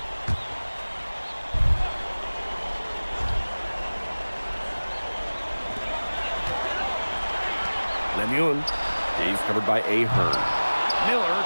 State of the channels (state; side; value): inverted; both; correlation -1.00